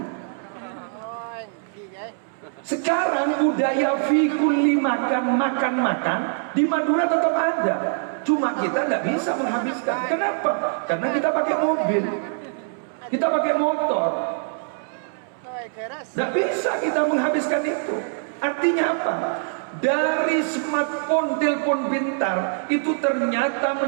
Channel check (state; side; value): silent; left; 63 dB below the other